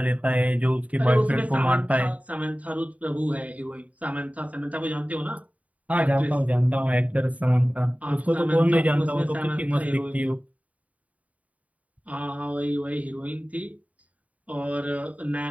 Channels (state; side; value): late; left; 0.070 ms